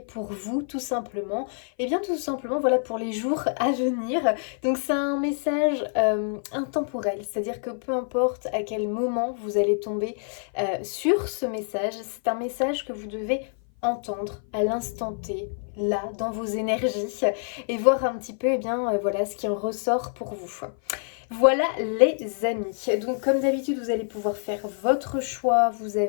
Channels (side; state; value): right; silent; 56 dB below the other